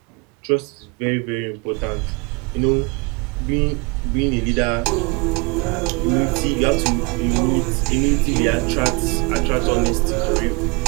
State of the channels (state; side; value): quieter; left; 28.7 dB